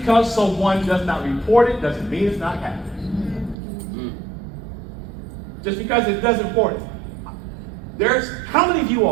someone does not report it doesn't mean it's not happening. Just because it doesn't report it. How many of you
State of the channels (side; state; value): left; drops out; at 3.6 s